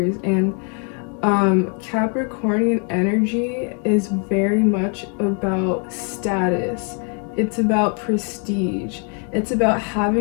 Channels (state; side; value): quieter; right; 39.8 dB